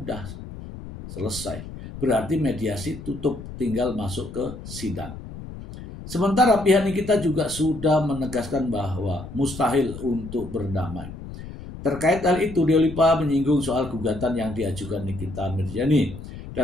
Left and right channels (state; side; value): noise; left; rumble, 12 dB below the sound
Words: selesai. Berarti mediasi tutup, tinggal masuk ke sidang. Sementara pihak Nikita juga sudah menegaskan bahwa mustahil untuk berdamai. Terkait hal itu, Diolipa menyinggung soal gugatan yang diajukan Nikita Mirzani.